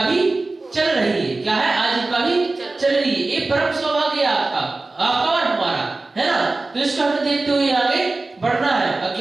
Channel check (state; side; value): quieter; left; 3.3 dB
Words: भी चल रही है। क्या है? आजीविका भी चल रही है। ये परम सौभाग्य है आपका और हमारा, है ना। तो इसको हमें देखते हुए आगे बढ़ना है।